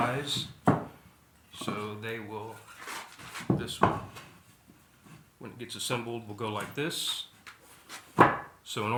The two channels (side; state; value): both; identical; correlation 1.00